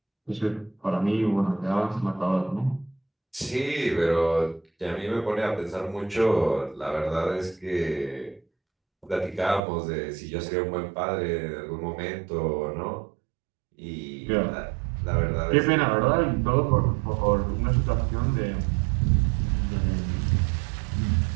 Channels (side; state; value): left; drops out; at 9.6 s